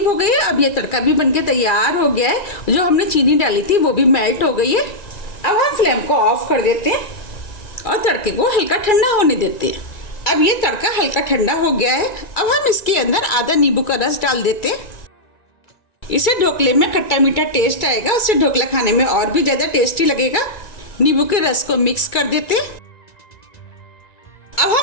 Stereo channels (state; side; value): late; right; 2.3 ms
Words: हो गए। अब ये तड़का भी बनके तैयार हो गया है। जो हमने चीनी डाली थी वो भी मेल्ट हो गई है। अब हम फ्लेम को ऑफ कर देते हैं और तड़के को हल्का ठंडा होने देते हैं। अब ये तड़का हल्का ठंडा हो गया है। अब हम इसके अंदर आधा नींबू का रस डाल देते हैं। इसे ढोकले में खट्टा मीठा टेस्ट आएगा। उससे ढोकला खाने में और भी ज्यादा टेस्टी लगेगा। नींबू के रस को मिक्स कर देते हैं। अब